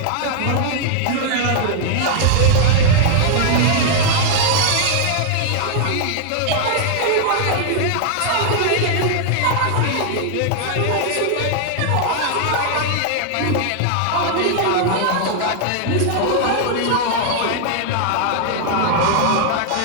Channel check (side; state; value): both; different; correlation 0.00